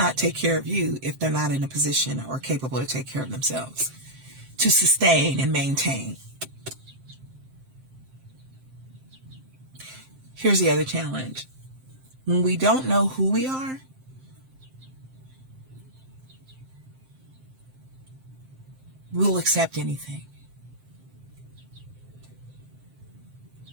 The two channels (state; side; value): late; left; 7.6 ms